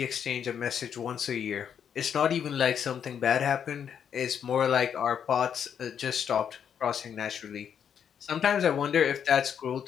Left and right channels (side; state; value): right; quieter; 8.2 dB